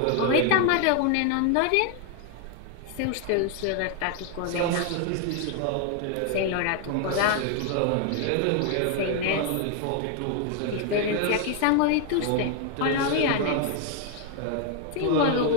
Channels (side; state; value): both; different; correlation 0.00